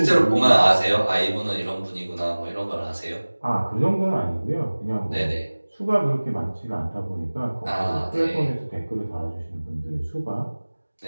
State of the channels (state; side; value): inverted; both; correlation -1.00